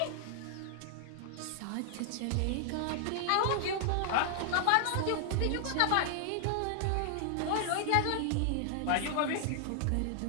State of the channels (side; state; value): both; different; correlation 0.00